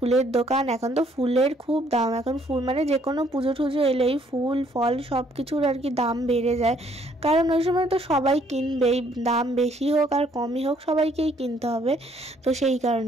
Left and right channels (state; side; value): normal; both; correlation 0.65